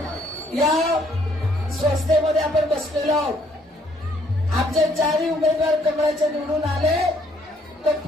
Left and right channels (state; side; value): normal; both; correlation 0.66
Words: या संस्थेमध्ये आपण बसलेलो आहोत. आमचे चारही उमेदवार कमळाचे निवडून आले तर